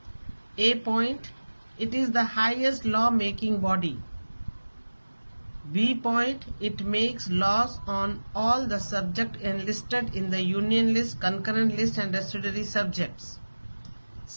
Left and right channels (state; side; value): inverted; both; correlation -1.00